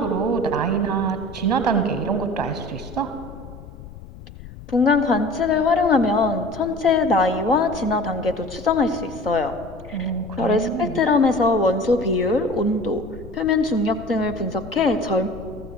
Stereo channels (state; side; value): noise; left; rumble, 16 dB below the sound